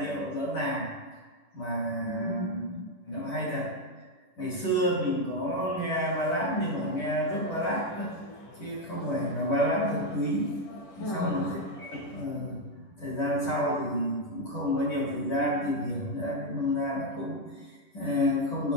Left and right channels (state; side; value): late; right; 10 ms